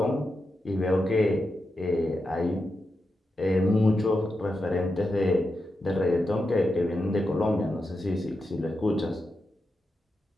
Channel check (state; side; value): normal; both; correlation 0.88